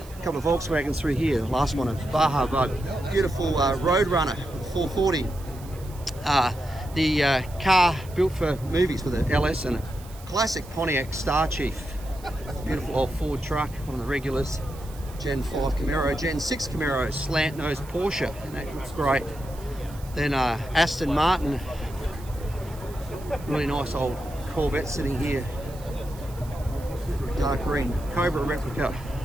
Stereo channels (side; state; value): right; noise; hiss, 21 dB below the sound